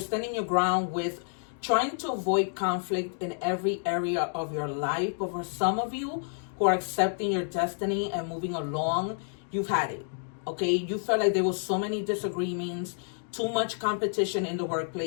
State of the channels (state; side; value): silent; right; digital silence